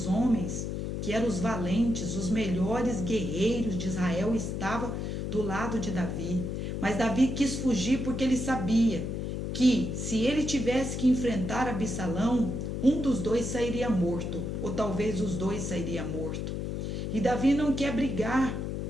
homens, que eram os valentes, os melhores guerreiros de Israel, estavam do lado de Davi. Mas Davi quis fugir porque ele sabia que se ele tivesse que enfrentar Absalão, um dos dois sairia morto, ou talvez os dois sairiam mortos. E Davi não quer brigar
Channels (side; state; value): left; noise; hum, 3 dB below the sound